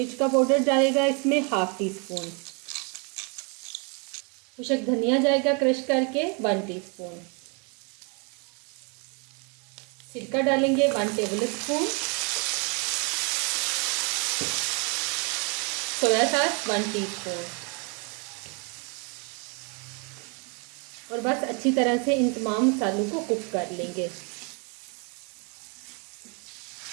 का पाउडर डालेगा इसमें 1/2 टीस्पून, खुशक धनिया जाएगा क्रश करके 1 टीस्पून, सिरका डालेंगे 1 table spoon, soya sauce 1 teaspoon और बस अच्छी तरह से इन तमाम मसालों को कुक कर लेंगे।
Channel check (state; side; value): quieter; left; 34.5 dB